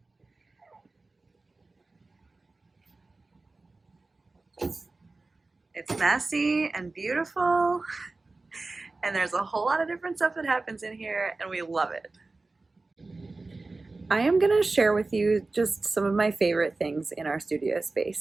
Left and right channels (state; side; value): quieter; left; 3.4 dB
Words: It's messy and beautiful, and there's a whole lot of different stuff that happens in here, and we love it. I am going to share with you just some of my favorite things in our studio